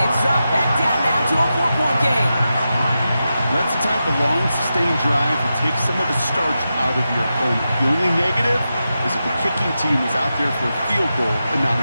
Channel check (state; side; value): inverted; both; correlation -0.90